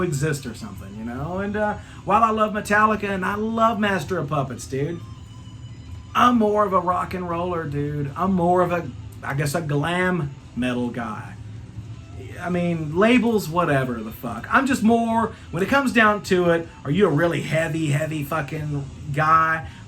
or something, And while I love Metallica and I love Master of Puppets, dude, I'm more of a rock and roller, dude. I'm more of a glam metal guy. I mean, labels, whatever the fuck. I'm just more, when it comes down to it, are you a really heavy fucking guy,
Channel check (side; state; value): both; identical; correlation 1.00